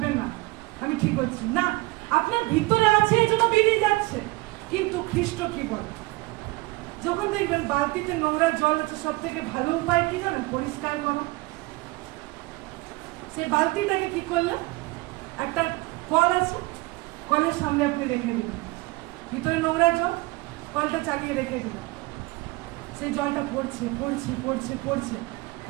না, আমি ঠিক হচ্ছি না, আপনার ভিতরে আছে এই জন্য বেরিয়ে যাচ্ছে। কিন্তু খ্রিস্ট কি বলে? যখন দেখবেন বালতিতে নোংরা জল আছে, সব থেকে ভালো উপায় কি জানেন? পরিষ্কার করো। সেই বালতিটাকে কি করলেন? একটা কল আছে, কলের সামনে আপনি রেখে দিলেন, ভিতরে নোংরা জল, কলটা চালিয়ে রেখে দিলেন, সেই জলটা পড়ছে পড়ছে পড়ছে পড়ছে।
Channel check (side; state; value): left; quieter; 22.5 dB